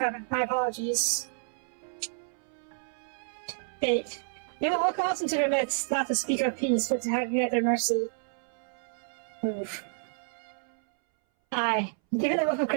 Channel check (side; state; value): left; silent; 58 dB below the other